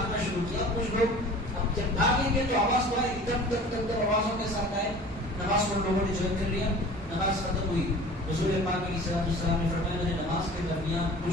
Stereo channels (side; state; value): both; normal; correlation 0.42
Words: شروع کیا. کچھ لوگ جب بھاگیں گے تو آواز تو آئے، ادھر آوازوں کے ساتھ آئے. نماز کو لوگوں نے جوائن کر لیا، نماز ختم ہوئی. حضور پاک علیہ السلام نے فرمایا میں نے نماز کے درمیان